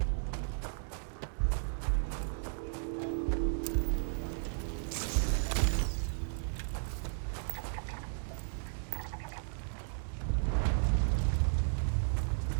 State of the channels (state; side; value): silent; left; 55 dB below the other